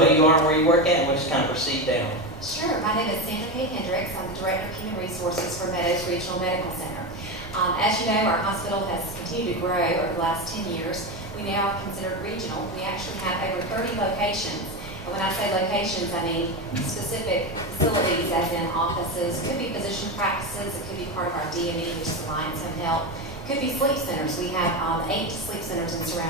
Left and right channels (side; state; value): both; normal; correlation 0.17